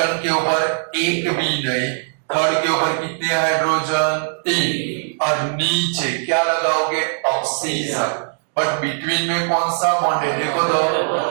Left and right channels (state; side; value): silent; left; digital silence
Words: के ऊपर एक भी नहीं। थर्ड के ऊपर कितने हाइड्रोजन? 3। और नीचे क्या लगाओगे? ऑक्सीजन। बट बिटवीन में कौन सा बॉन्ड है? देखो तो,